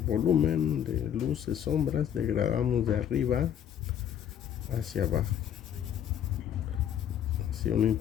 volumen, de luces, sombras, degradamos de arriba hacia abajo, así una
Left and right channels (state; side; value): quieter; right; 9.6 dB